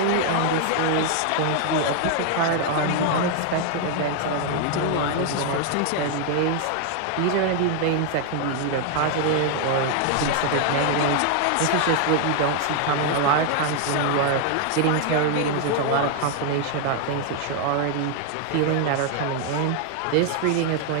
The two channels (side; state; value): both; different; correlation 0.00